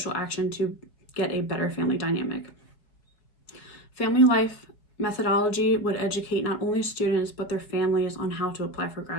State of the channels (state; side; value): late; right; 4.5 ms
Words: action to get a better family dynamic. Family life methodology would educate not only students but their families on how to apply for